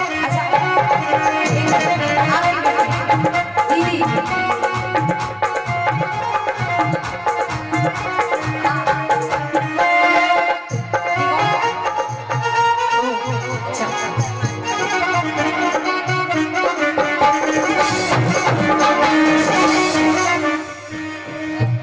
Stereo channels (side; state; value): both; identical; correlation 1.00